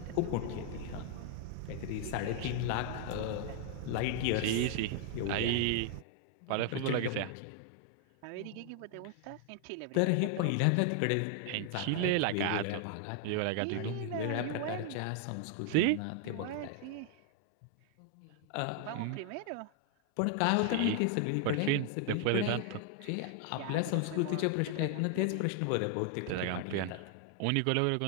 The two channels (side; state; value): both; different; correlation 0.00